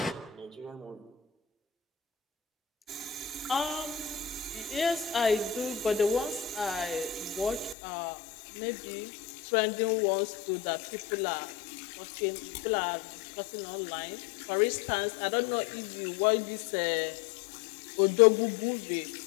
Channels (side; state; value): right; drops out; at 7.8 s